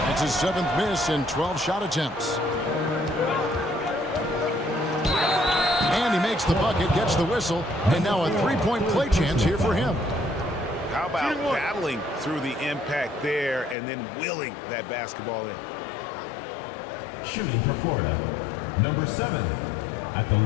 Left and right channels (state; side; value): drops out; right; at 13.8 s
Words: That's his 7th miss in 12 shot attempts. And he makes the bucket, gets the whistle, and now a 3-point play chance here for him. How about battling through the impact there and then willing that basketball in? Shooting for Florida, number 7, at the